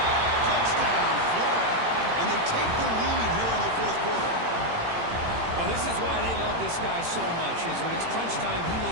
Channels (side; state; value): left; late; 18 ms